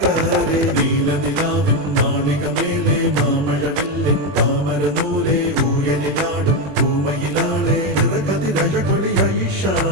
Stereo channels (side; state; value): left; late; 21 ms